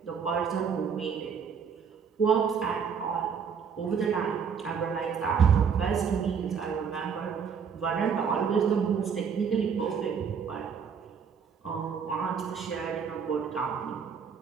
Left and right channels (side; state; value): left; quieter; 6.7 dB